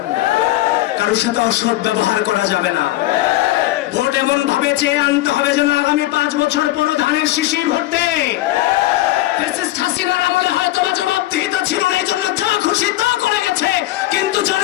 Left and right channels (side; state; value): right; quieter; 16.4 dB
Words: কারোর সাথে অসৎ ব্যবহার করা যাবে না। ভোট এমন ভাবে চেয়ে আনতে হবে যেন আগামী 5 বছর পর ধানের শিশির ভরতে হাসিনার আমলে হয়তো বা জবাবদিহিতা ছিল না, এই জন্য যা খুশি তা করে গেছে, কিন্তু